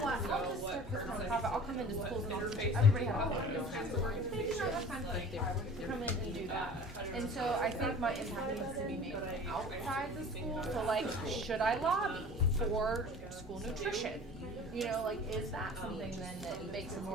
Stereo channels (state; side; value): normal; both; correlation 0.43